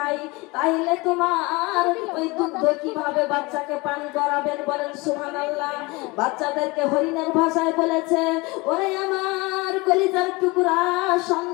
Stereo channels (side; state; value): right; quieter; 24.5 dB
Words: তাহলে তোমার ওই দুগ্ধ কিভাবে বাচ্চাকে পান করাবেন বলেন সুবহানাল্লাহ বাচ্চাদেরকে হরিণের ভাষায় বলেছে ওরে আমার কলিজার টুকরা